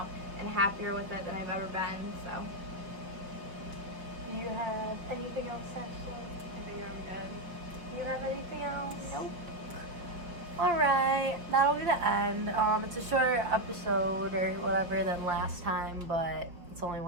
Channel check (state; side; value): late; left; 5.7 ms